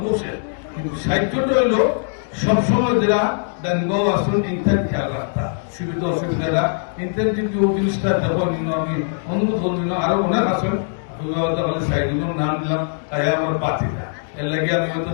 বসে কিন্তু সাহায্যটা হইলো সবসময় যারা ডানবাও আসুন ইত্যাদি খেয়াল রাখতা সুবিধা অসুবিধাটা ইত্যাদি যদি ওই জিনিসটা দেবো নিল আমি অনুমোদন নিল আরো অনেক আসুন সাইডুলের নাম দিলাম তাই আমার বাতিটা এর লাগে আমি হয়তো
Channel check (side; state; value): right; silent; digital silence